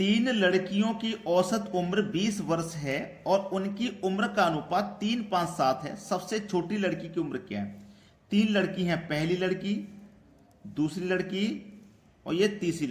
लड़कियों की औसत उम्र 20 वर्ष है और उनकी उम्र का अनुपात 3-5-7 है। सबसे छोटी लड़की की उम्र क्या है? 3 लड़की हैं, पहली लड़की, दूसरी लड़की और ये तीसरी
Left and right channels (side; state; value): both; identical; correlation 1.00